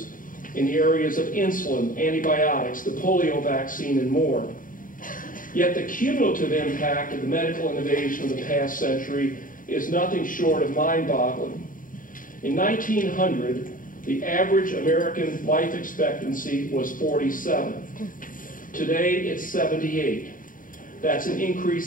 in the areas of insulin, antibiotics, the polio vaccine, and more. Yet the cumulative impact of the medical innovation of the past century is nothing short of mind-boggling. In 1900, the average American life expectancy was 47. Today, it's 78. That's an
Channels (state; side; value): late; right; 0.39 ms